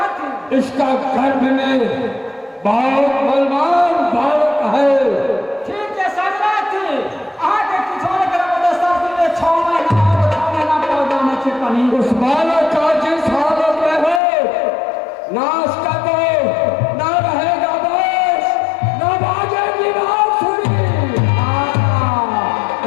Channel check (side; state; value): right; drops out; at 14.2 s